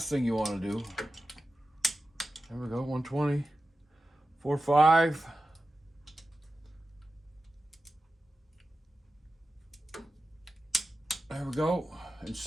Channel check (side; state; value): both; normal; correlation 0.92